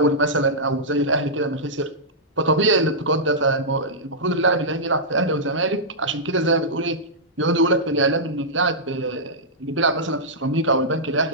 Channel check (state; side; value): normal; both; correlation -0.12